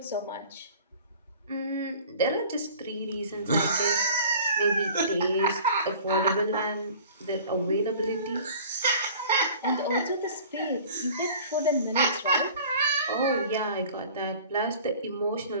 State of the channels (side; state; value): both; inverted; correlation -0.45